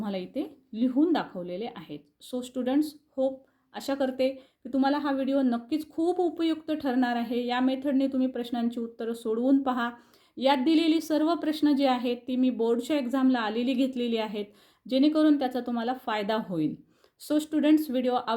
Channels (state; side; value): identical; both; correlation 1.00